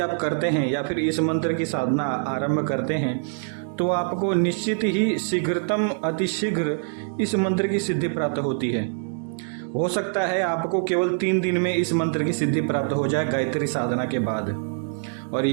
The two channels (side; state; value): left; silent; digital silence